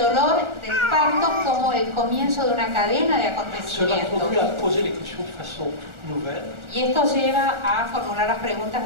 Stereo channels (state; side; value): late; left; 1.4 ms